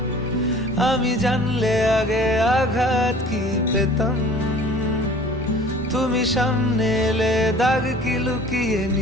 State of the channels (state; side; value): normal; both; correlation 0.47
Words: আমি জানলে আগে আঘাত কি পেতাম, তুমি সামনে এলে দাগ কি লুকিয়ে